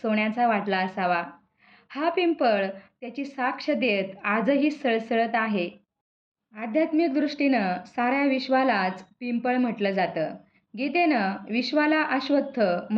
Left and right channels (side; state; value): both; identical; correlation 1.00